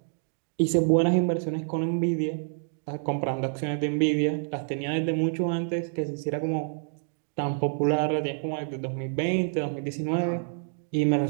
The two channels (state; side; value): silent; left; digital silence